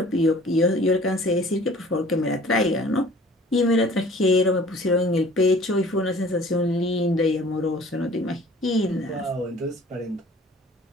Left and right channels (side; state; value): both; normal; correlation 0.50